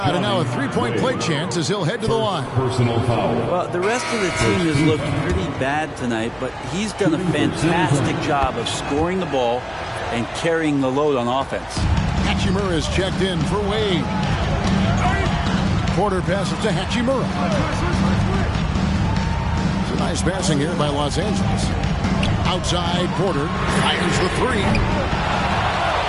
and now a 3-point play chance as he'll head to the line. Personal foul. Well, the rest of the team has looked pretty bad tonight, but he's done a fantastic job of scoring the ball and carrying the load on offense. Hachimura is checked in for Wade. Porter passes to Hachimura. Nice passing here by Los Angeles. Outside, Porter fires the 3.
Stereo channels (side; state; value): both; identical; correlation 1.00